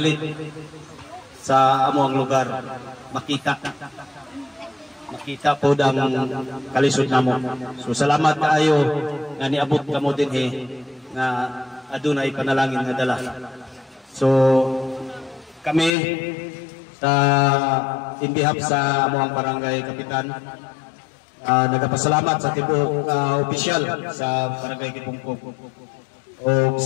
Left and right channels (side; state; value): right; drops out; at 15.9 s